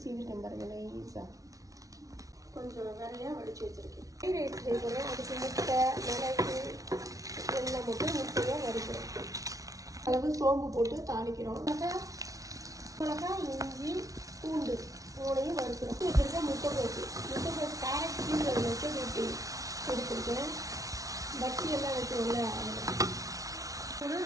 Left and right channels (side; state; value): left; late; 0.17 ms